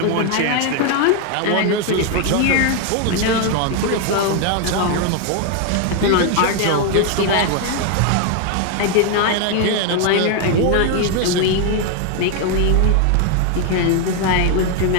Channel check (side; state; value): both; different; correlation 0.01